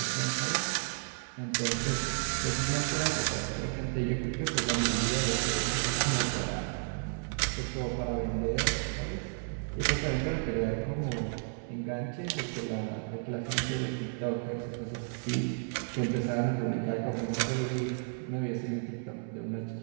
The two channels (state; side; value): silent; left; 56 dB below the other